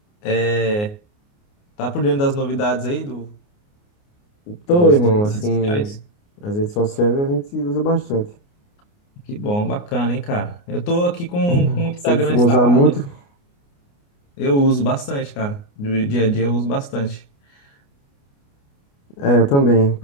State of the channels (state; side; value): late; right; 29 ms